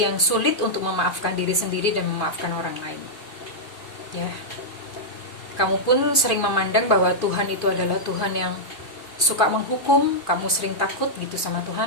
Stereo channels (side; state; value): right; late; 2.5 ms